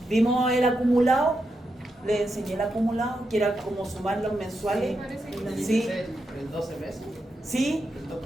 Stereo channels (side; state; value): both; normal; correlation 0.85